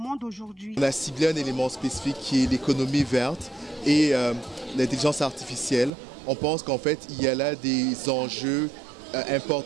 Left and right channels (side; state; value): left; drops out; at 5.9 s